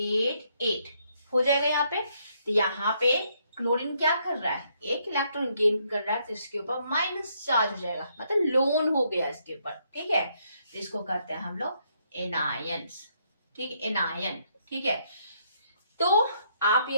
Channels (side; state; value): both; inverted; correlation -0.73